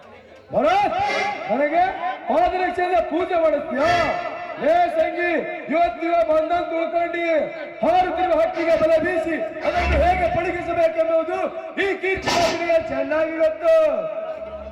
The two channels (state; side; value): identical; both; correlation 1.00